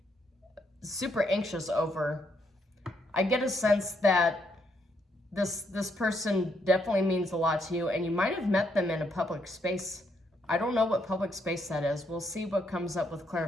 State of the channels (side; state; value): both; normal; correlation 0.75